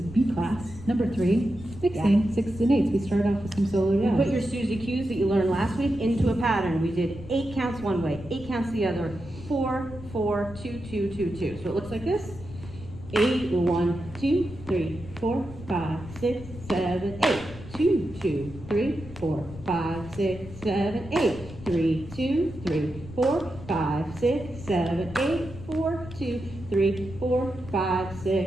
class, number 3, mixing 6s and 8s. We started off with some solo jazz. You put your Suzy cues that you learned last week into a pattern. We did 8 counts one way, 8 counts the other, 4, 4, 2, 2, 2, 2. So it looks like this. 8, 1, 2, 3, 4, 5, 6, 7, 8. 2, 2, 3, 4, 5, 6, 7, 8. 3, 2, 3, 4, 5, 6, 7, 8. 4, 2, 3, 4, 5,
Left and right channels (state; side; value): noise; left; rumble, 14 dB below the sound